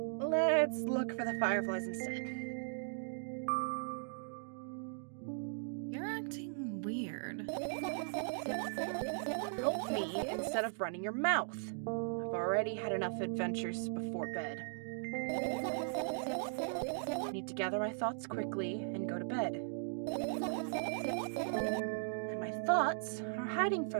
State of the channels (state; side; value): silent; left; digital silence